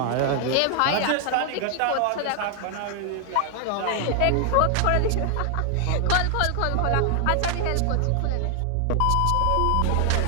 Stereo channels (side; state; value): both; different; correlation 0.00